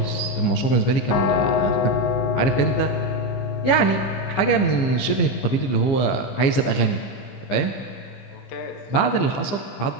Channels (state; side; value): late; right; 15 ms